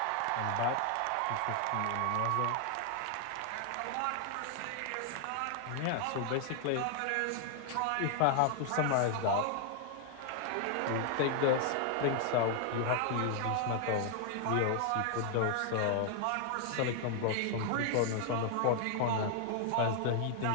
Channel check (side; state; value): both; different; correlation 0.00